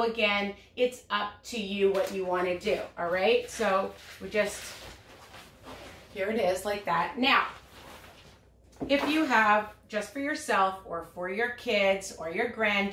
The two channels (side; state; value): both; identical; correlation 1.00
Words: again, it's up to you what you want to do. All right. So we just, here it is like that. Now, if you have just for yourself or for your kids or your